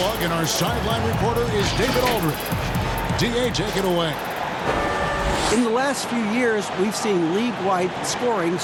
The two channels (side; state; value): both; identical; correlation 1.00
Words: and our sideline reporter is David Aldridge. DA, take it away. In the last few years, we've seen league-wide scoring